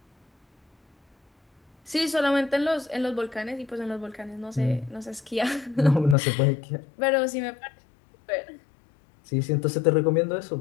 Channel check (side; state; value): right; drops out; at 6.2 s